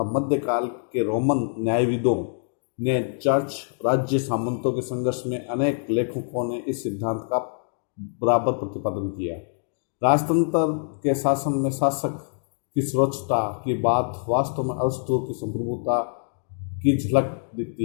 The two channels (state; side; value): silent; right; digital silence